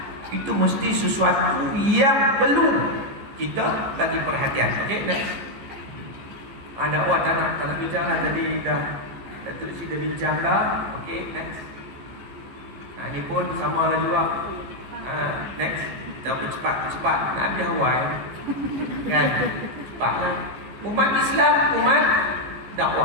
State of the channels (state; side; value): late; left; 14 ms